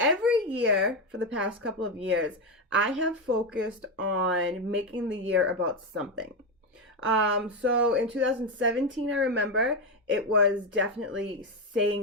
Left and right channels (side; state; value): both; normal; correlation 0.10